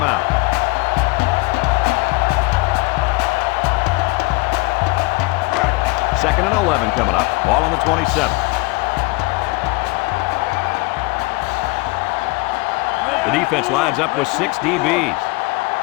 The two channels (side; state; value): right; quieter; 24.9 dB